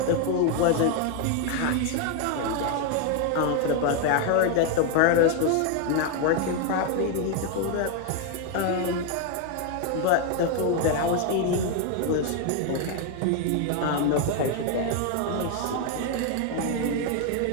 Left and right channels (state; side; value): different; both; correlation 0.01